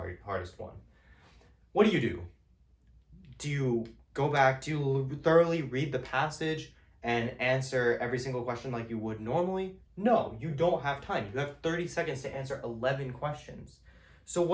one. What do? Do you go back, do you thoroughly read the passage and answer every single question like you would normally? No, you don't have time. You have 30 seconds to answer 11 questions. So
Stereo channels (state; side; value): identical; both; correlation 1.00